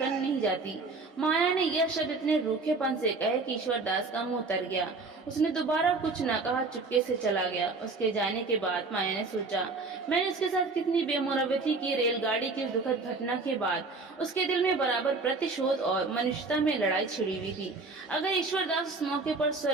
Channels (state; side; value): quieter; left; 3.8 dB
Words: नहीं जाती। माया ने यह शब्द इतने रूखेपन से कहे कि ईश्वर दास का मुंह उतर गया। उसने दोबारा कुछ न कहा, चुपके से चला गया। उसके जाने के बाद माया ने सोचा, मैंने उसके साथ कितनी बेमुरवती की। रेलगाड़ी की दुखद घटना के बाद उसके दिल में बराबर प्रतिशोध और मनुष्यता में लड़ाई छिड़ी हुई थी। अगर ईश्वर दास उस मौके पर